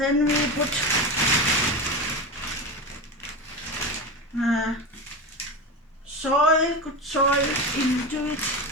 we put good soil into it.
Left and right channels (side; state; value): both; normal; correlation 0.22